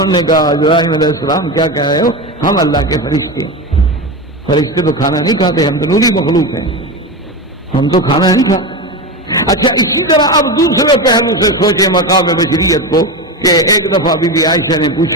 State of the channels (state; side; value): normal; both; correlation 0.20